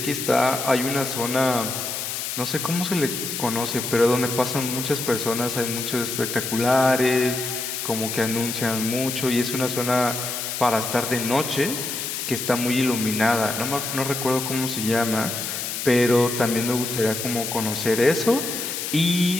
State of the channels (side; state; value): left; noise; hiss, 4 dB below the sound